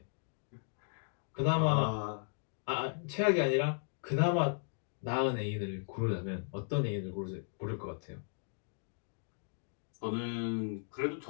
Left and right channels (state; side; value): silent; right; digital silence